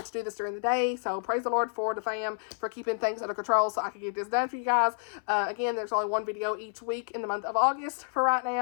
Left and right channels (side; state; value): right; silent; 58 dB below the other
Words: do this during the day. So, praise the Lord for the fam for keeping things under control so I could get this done for you guys. Again, there's only one video each week in the month of August for right